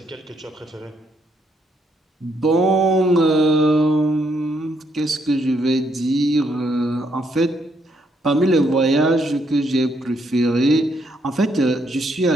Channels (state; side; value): normal; both; correlation 0.74